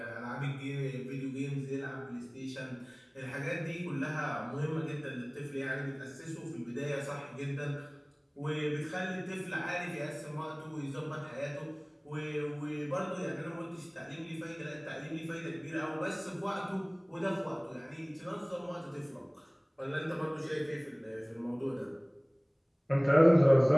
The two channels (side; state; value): both; identical; correlation 1.00